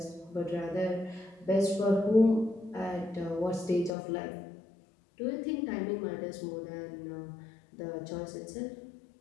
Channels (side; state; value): right; drops out; at 3.9 s